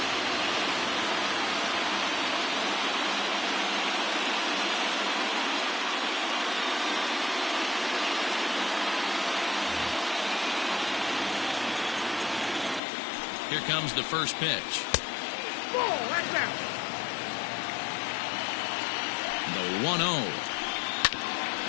Here comes the first pitch. The 1-0.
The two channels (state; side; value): drops out; right; at 12.8 s